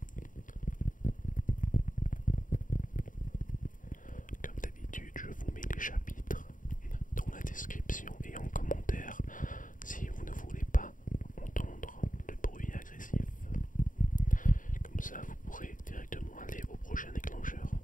Comme d'habitude, je vous mets les chapitres dans la description et en commentaire si vous ne voulez pas entendre le bruit agressif. Comme ça, vous pourrez directement aller au prochain déclencheur.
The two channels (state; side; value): late; right; 0.38 ms